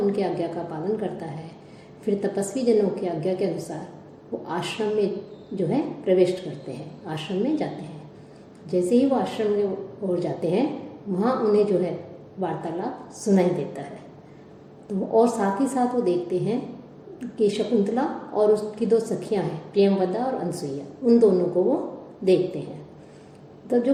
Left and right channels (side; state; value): both; identical; correlation 1.00